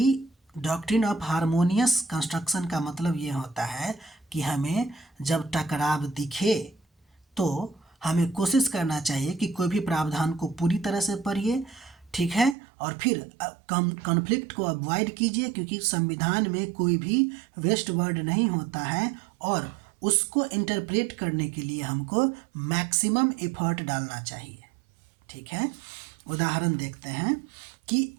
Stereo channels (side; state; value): left; drops out; at 12.6 s